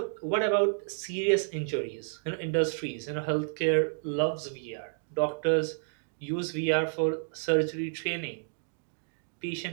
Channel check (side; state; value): left; silent; digital silence